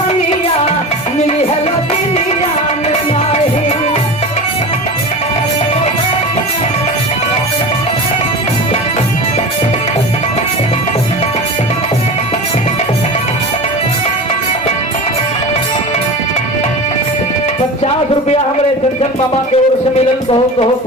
मिली है लगिनिया में नाही। ₹50 हमारे चंचन मामा के ओर से मिलन, बहुत बहुत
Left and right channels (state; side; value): normal; both; correlation 0.31